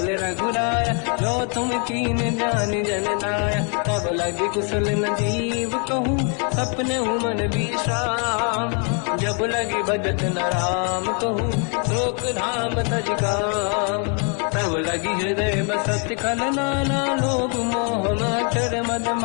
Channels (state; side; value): quieter; right; 39.3 dB